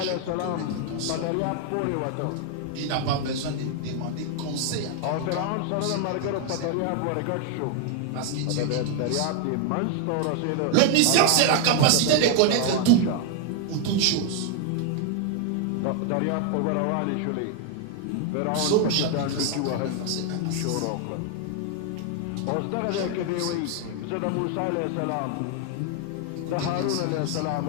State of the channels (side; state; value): both; different; correlation 0.00